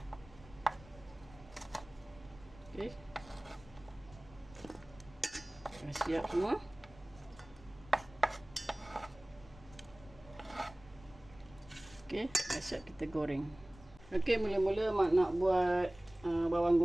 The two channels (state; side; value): noise; left; rumble, 21 dB below the sound